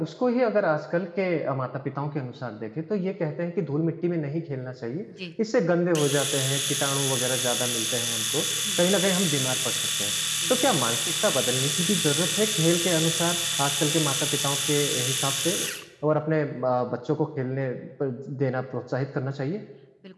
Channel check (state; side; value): identical; both; correlation 1.00